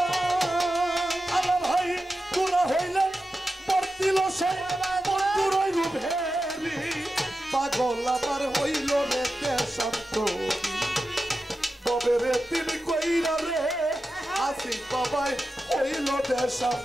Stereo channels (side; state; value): both; normal; correlation 0.92